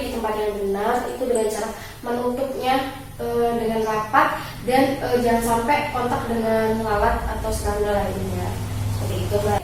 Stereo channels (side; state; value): both; identical; correlation 1.00